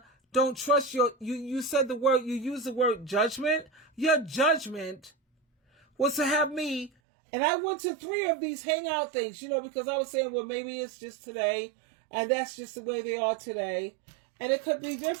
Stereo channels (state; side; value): drops out; left; at 6.9 s